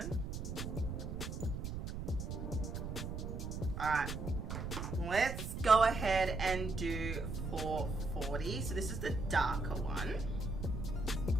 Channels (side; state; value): right; noise; rumble, 5 dB below the sound